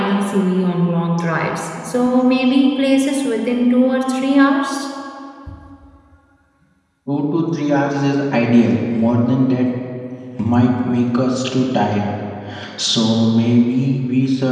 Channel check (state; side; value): identical; both; correlation 1.00